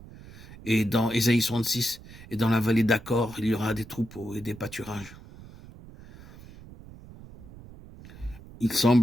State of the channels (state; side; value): noise; right; rumble, 18 dB below the sound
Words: Et dans Ésaïe 66, et dans la vallée d'Accord, il y aura des troupeaux et des pâturages. Il